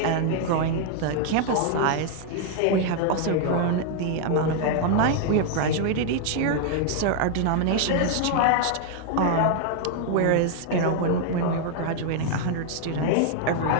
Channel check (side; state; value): both; different; correlation 0.00